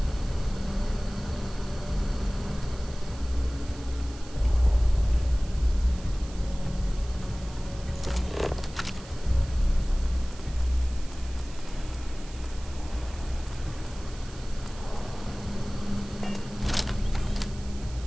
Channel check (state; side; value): noise; right; hiss, 19 dB below the sound